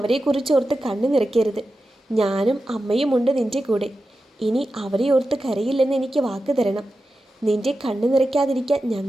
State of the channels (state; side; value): normal; both; correlation 0.91